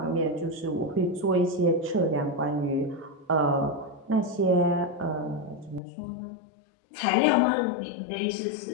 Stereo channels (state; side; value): drops out; right; at 5.8 s